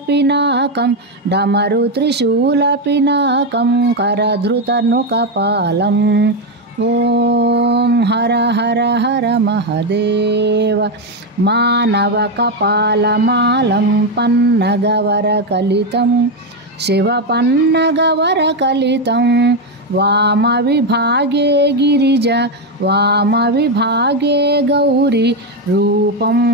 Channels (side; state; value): both; normal; correlation 0.08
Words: करधृतनुकपालं। ఓం హర హర హర మహదేవ మానవకపాలమాలం పన్నగవరకలితం శివపన్నగవరకలితం వామవిభాగే గిరిజ వామవిభాగే గౌరీ రూపం